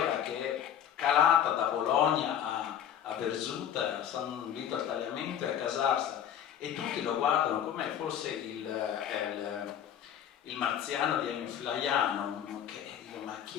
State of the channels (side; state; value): right; quieter; 9.6 dB